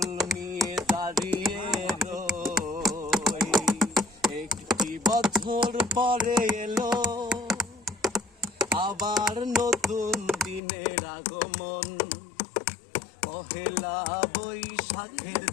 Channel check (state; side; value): drops out; right; at 10.6 s